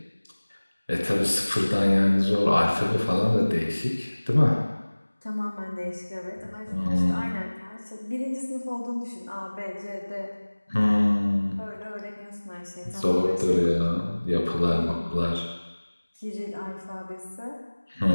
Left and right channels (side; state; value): both; inverted; correlation -1.00